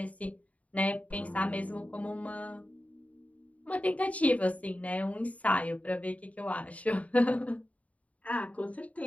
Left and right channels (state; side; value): late; right; 0.068 ms